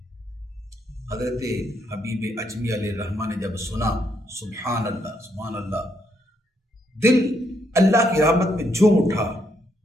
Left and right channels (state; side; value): normal; both; correlation 0.75